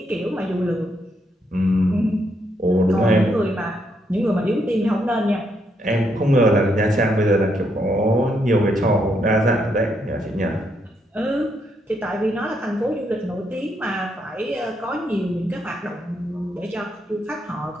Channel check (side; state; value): both; normal; correlation 0.77